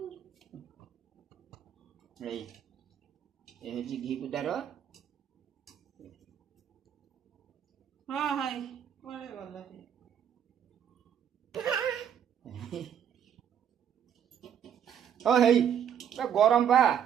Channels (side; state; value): left; quieter; 8.9 dB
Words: ए होची घी पिठा रो हां हाय कोले गला ओ हेई गरम बा